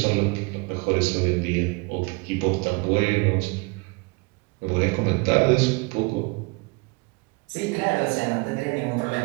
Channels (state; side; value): quieter; left; 27.4 dB